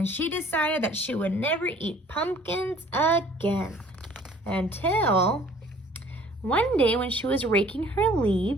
she decided that she would never eat pumpkins again until one day when she was raking her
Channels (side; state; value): both; normal; correlation 0.54